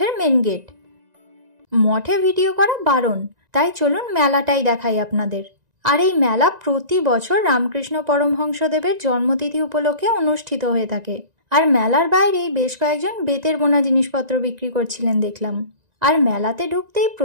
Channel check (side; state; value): left; late; 1.9 ms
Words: মেন গেট, মঠে ভিডিও করা বারণ, তাই চলুন মেলাটাই দেখাই আপনাদের। আর এই মেলা প্রতি বছর রামকৃষ্ণ পরমহংসদেবের জন্মতিথি উপলক্ষে অনুষ্ঠিত হয়ে থাকে। আর মেলার বাইরেই বেশ কয়েকজন বেতের বোনা জিনিসপত্র বিক্রি করছিলেন দেখলাম। আর মেলাতে ঢুকতেই